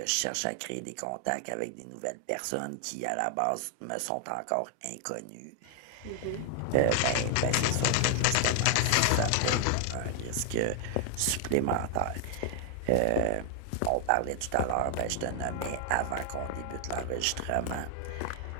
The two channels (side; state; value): both; different; correlation 0.00